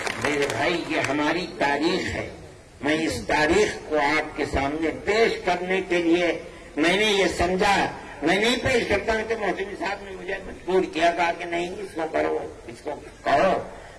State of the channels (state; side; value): identical; both; correlation 1.00